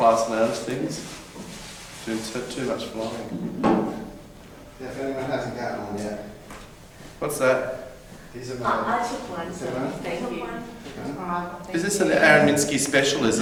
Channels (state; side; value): identical; both; correlation 1.00